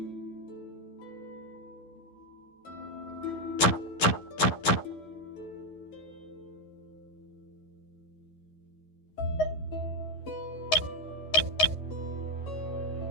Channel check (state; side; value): late; right; 11 ms